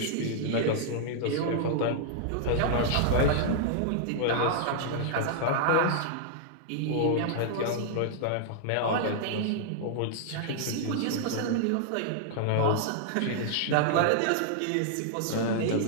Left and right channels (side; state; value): both; different; correlation -0.01